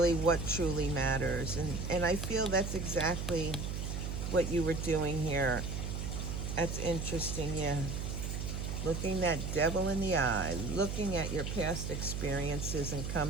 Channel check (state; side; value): noise; right; hum, 3 dB below the sound